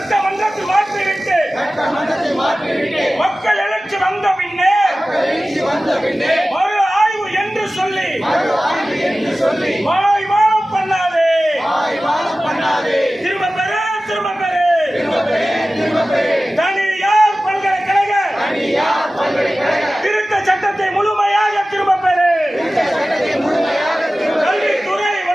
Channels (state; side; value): normal; both; correlation 0.96